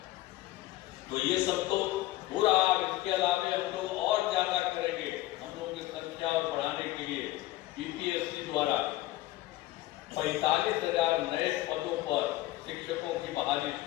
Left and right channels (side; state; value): right; quieter; 16.6 dB